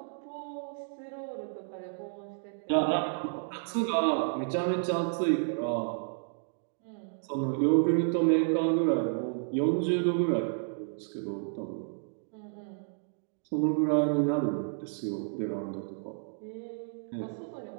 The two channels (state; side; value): silent; left; digital silence